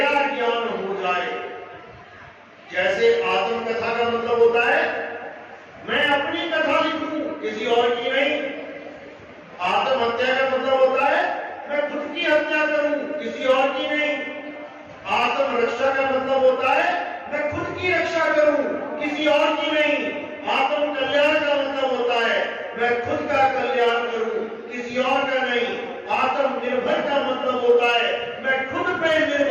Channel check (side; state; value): both; identical; correlation 1.00